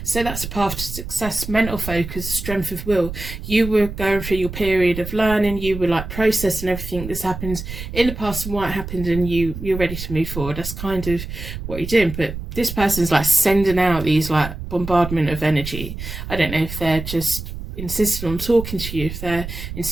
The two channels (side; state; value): right; noise; rumble, 8 dB below the sound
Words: so that's a path to success, mental focus, strength of will. You were going through your period of learning, you were like processing everything that's happened in the past and why it happened, and you're ready to move forward. That's kind of what you're doing. But this person's like sending out these like bombardment of energy. I don't know if they're just insisting on talking to you, if they're